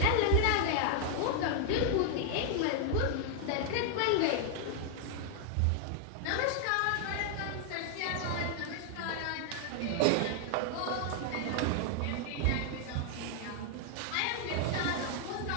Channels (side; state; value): both; different; correlation 0.00